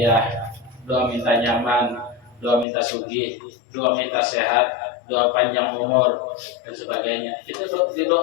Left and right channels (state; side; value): drops out; right; at 2.7 s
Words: doa minta nyaman, doa minta sugih, doa minta sehat, doa panjang umur dan sebagainya. Itu